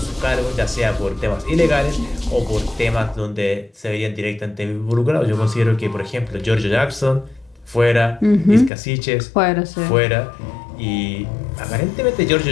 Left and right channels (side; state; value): right; drops out; at 8.7 s